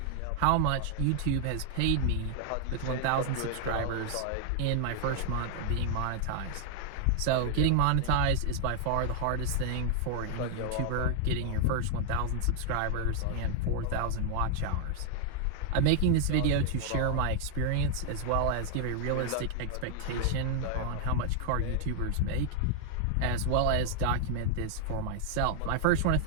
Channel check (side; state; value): both; different; correlation 0.00